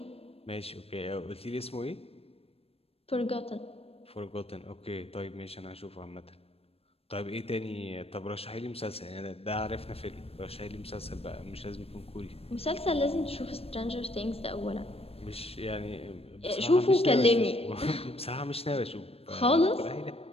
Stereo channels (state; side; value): late; right; 0.28 ms